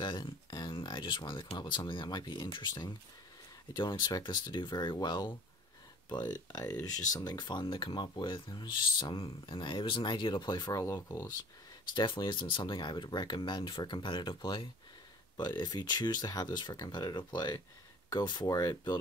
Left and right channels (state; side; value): normal; both; correlation 0.49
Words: and I just wanted to come up with something that might be interesting. I don't expect this to do very well, but it was just something fun to come up with. It was just it was an idea to play for our locals. This definitely isn't something I would recommend for competitive play, but if you choose to have this for competitive play, go for it. Build